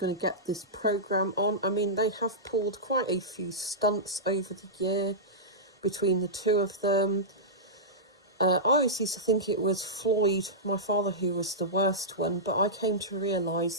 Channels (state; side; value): normal; both; correlation -0.14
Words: to get this programme on. I mean, they have pulled quite a few stunts over the year between the two of them. I always used to think it was Floyd, my father, who was the worst one, but I came to realise